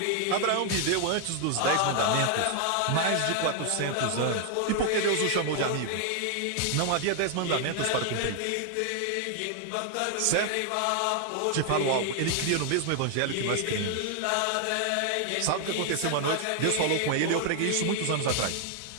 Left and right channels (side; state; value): both; different; correlation 0.00